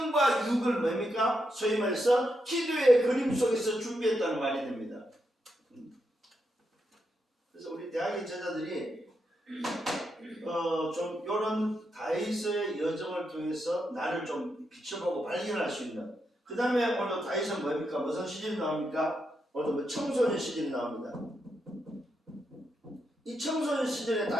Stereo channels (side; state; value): both; normal; correlation 0.83